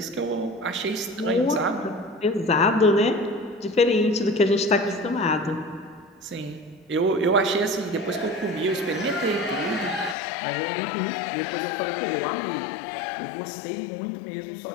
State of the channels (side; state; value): right; drops out; at 10.2 s